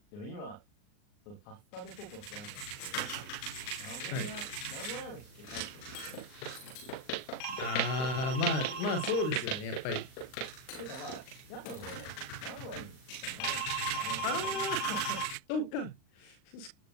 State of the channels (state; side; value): late; right; 39 ms